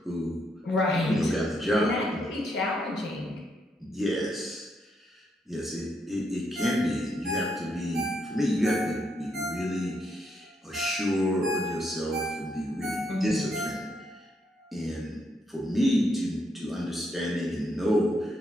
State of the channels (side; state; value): both; normal; correlation 0.77